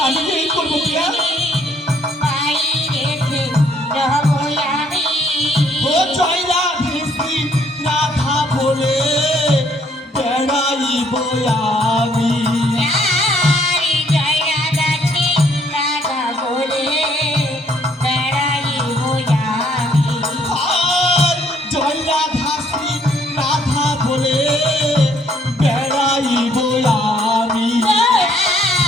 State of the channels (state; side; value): normal; both; correlation 0.66